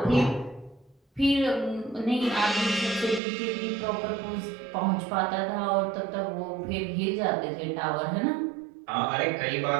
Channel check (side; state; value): left; drops out; at 3.2 s